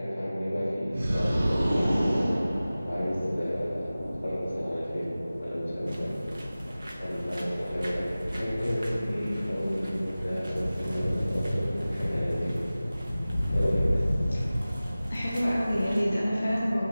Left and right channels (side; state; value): both; inverted; correlation -0.97